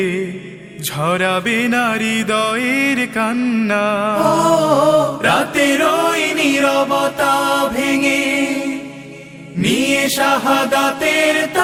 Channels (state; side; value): identical; both; correlation 1.00